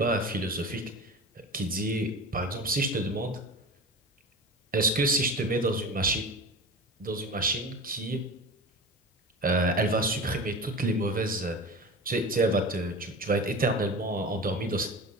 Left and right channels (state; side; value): normal; both; correlation 0.31